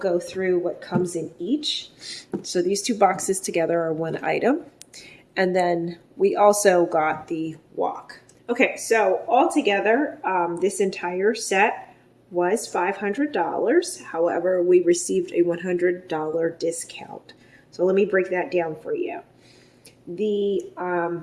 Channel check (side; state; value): both; identical; correlation 1.00